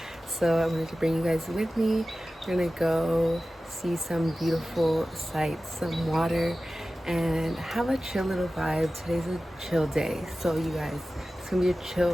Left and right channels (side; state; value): both; normal; correlation 0.95